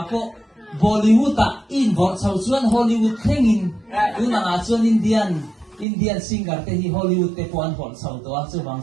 po Bollywood involve sau chuan Hollywood thengin tunanga chuan Indian singer te hi Hollywood te puan hol sau to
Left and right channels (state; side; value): drops out; left; at 5.9 s